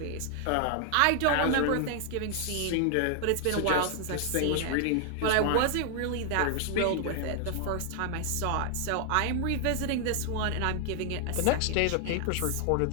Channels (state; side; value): different; both; correlation 0.00